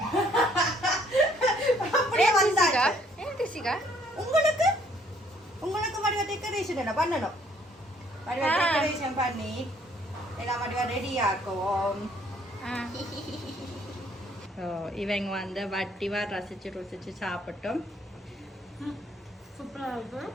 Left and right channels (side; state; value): both; normal; correlation 0.63